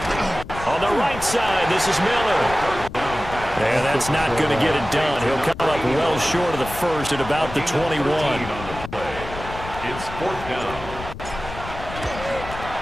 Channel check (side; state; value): left; noise; rumble, 11 dB below the sound